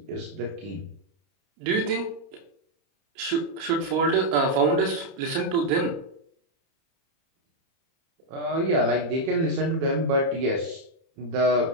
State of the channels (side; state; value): left; late; 30 ms